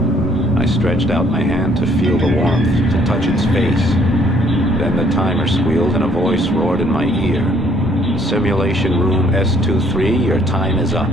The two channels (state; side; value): normal; both; correlation 0.62